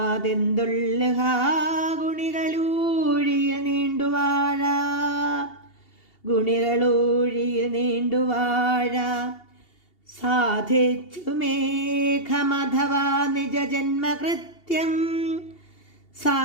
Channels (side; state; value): right; late; 2.8 ms